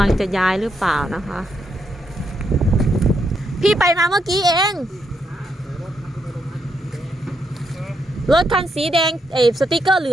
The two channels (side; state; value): both; normal; correlation 0.79